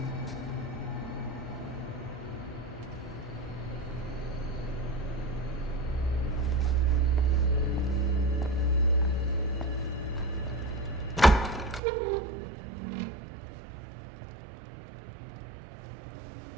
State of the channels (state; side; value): drops out; left; at 11.8 s